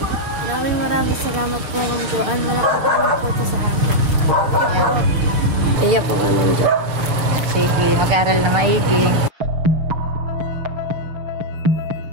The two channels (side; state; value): left; late; 6.8 ms